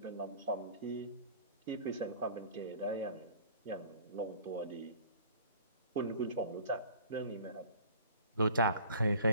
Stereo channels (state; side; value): inverted; both; correlation -0.46